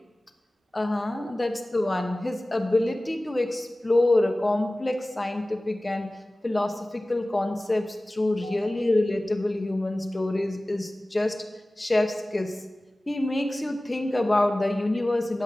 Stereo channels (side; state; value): both; normal; correlation 0.98